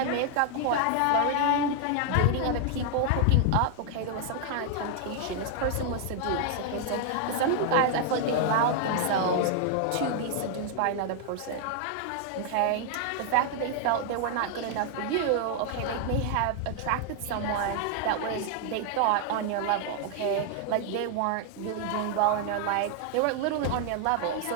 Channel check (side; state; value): both; different; correlation 0.00